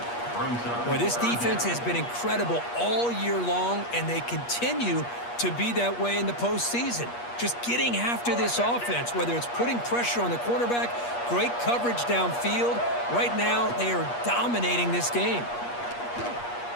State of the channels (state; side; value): late; right; 8.4 ms